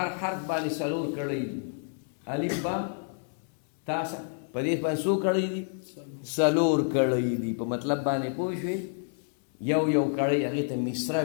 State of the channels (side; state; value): right; silent; digital silence